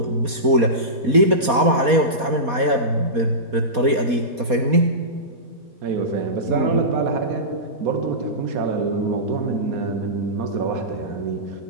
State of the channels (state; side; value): late; left; 4.2 ms